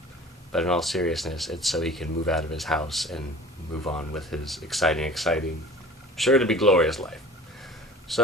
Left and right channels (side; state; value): both; normal; correlation 0.44